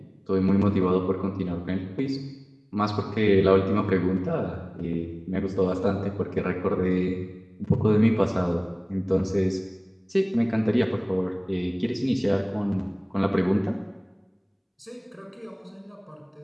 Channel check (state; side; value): identical; both; correlation 1.00